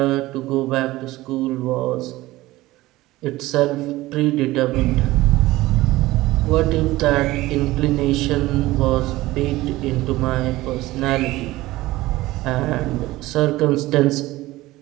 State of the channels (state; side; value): quieter; left; 18.0 dB